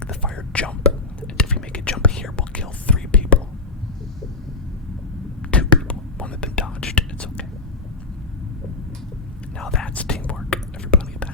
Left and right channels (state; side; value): quieter; right; 3.7 dB